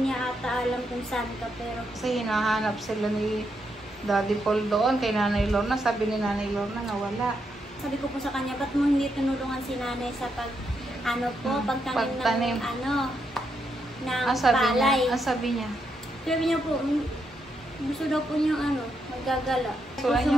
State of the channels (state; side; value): normal; both; correlation 0.80